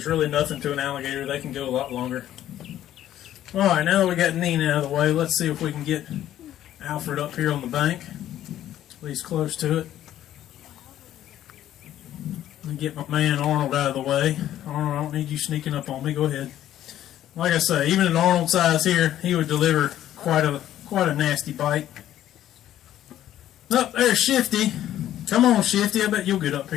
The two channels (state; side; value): quieter; right; 12.2 dB